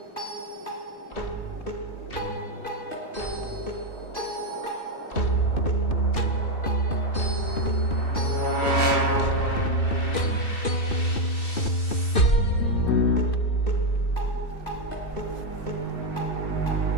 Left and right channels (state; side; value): late; right; 2.5 ms